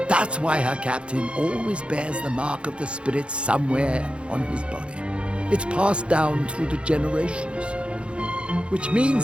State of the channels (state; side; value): late; left; 0.058 ms